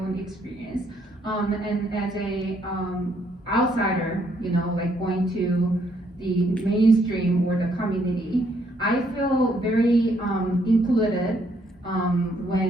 experience. And as a outsider, you know, like going to the mainstream or the community, I feel very included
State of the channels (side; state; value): both; normal; correlation 0.71